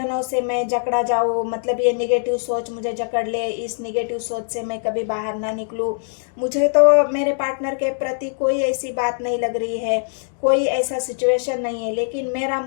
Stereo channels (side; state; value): right; silent; digital silence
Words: से मैं जकड़ा जाऊँ, मतलब ये निगेटिव सोच मुझे जकड़ ले, इस निगेटिव सोच से मैं कभी बाहर ना निकलूँ। मुझे तो मेरे पार्टनर के प्रति कोई ऐसी बात नहीं लग रही है, कोई ऐसा सिचुएशन नहीं है, लेकिन मेरा